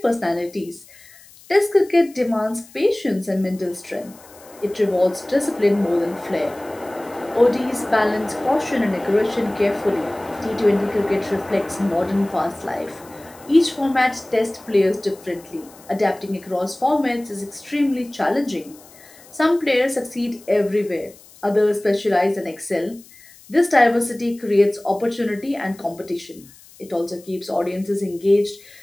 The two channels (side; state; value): left; noise; hiss, 24 dB below the sound